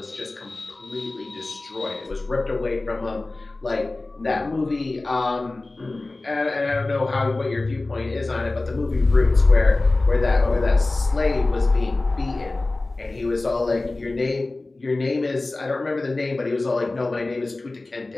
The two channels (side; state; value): right; quieter; 3.1 dB